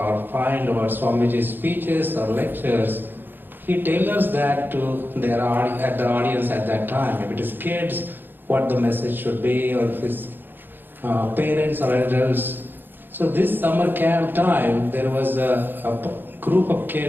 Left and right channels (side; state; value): left; late; 0.095 ms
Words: find about Swamiji's speeches or lectures. He tailors that to the audience at that time. If it is kids, what the message should be, or if his parents or adults. So this summer camp time, there was a group of